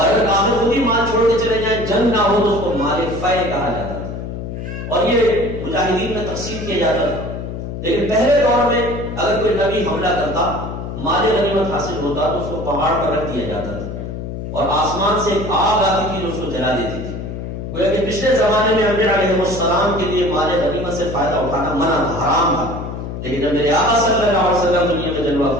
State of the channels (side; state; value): left; noise; hum, 7 dB below the sound